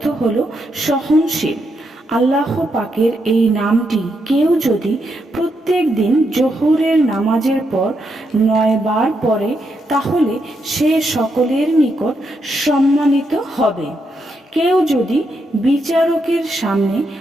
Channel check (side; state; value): both; normal; correlation 0.81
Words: হলো সহনশীল। আল্লাহ পাকের এই নামটি কেউ যদি প্রত্যেক দিন জোহরের নামাজের পর 9 বার পড়ে, তাহলে সে সকলের নিকট সম্মানিত হবে। কেউ যদি বিচারকের সামনে